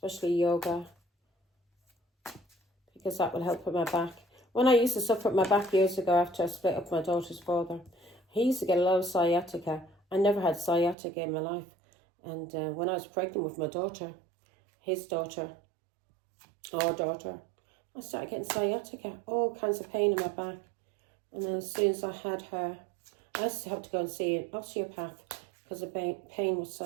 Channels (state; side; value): drops out; left; at 11.0 s